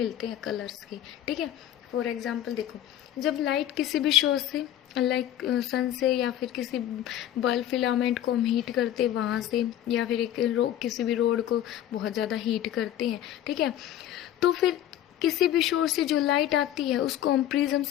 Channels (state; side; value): quieter; right; 11.9 dB